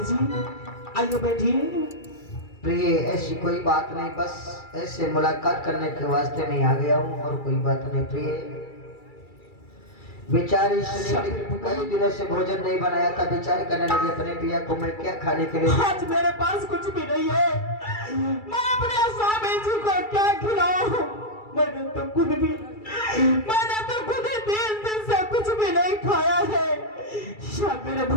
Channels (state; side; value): late; right; 2.3 ms